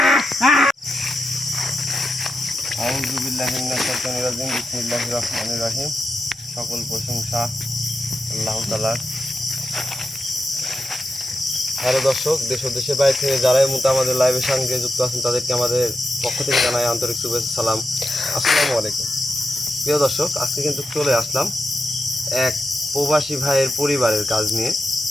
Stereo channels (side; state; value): both; normal; correlation 0.88